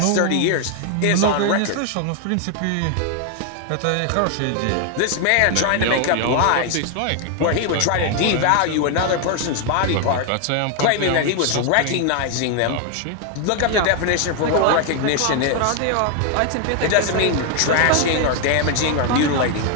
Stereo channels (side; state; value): both; different; correlation 0.00